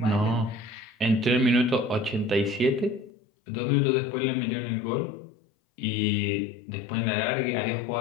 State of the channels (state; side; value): drops out; right; at 3.1 s